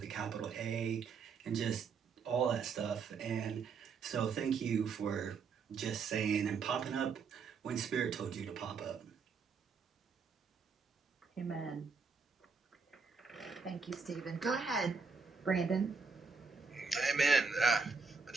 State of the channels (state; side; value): quieter; left; 5.1 dB